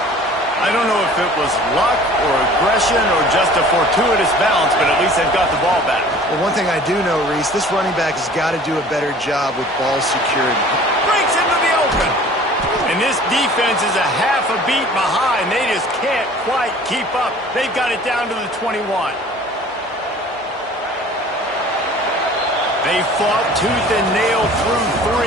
I don't know if it was luck or aggression or just a fortuitous bounce, but at least they've got the ball back. Well, one thing I do know, Reese, this running back has got to do a better job with ball security. Breaks into the open. And this defense is a half a beat behind. They just can't quite keep up. They've got it down to the 21. They fought tooth and nail through 3,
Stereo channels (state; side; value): normal; both; correlation 0.48